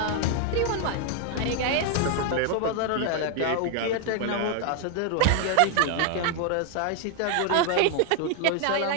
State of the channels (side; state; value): both; different; correlation 0.00